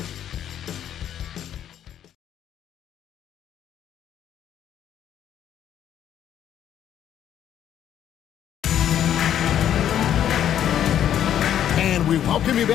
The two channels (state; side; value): quieter; right; 10.3 dB